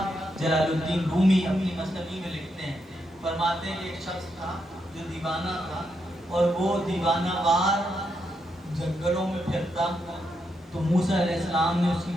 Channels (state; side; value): normal; both; correlation 0.82